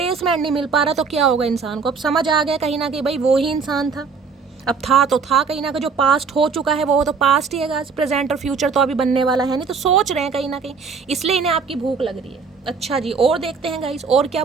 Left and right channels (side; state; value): left; quieter; 5.2 dB